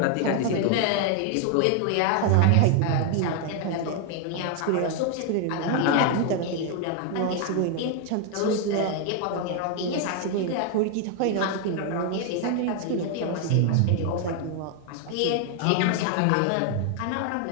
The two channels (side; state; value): both; different; correlation 0.01